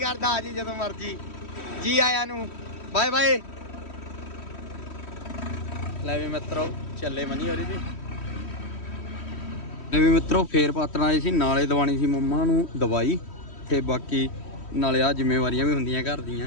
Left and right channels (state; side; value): late; right; 3.1 ms